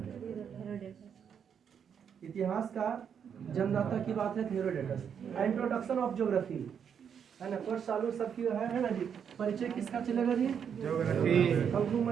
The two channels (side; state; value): left; quieter; 7.7 dB